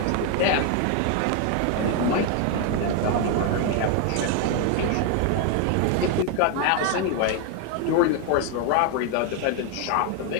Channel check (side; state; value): both; different; correlation 0.01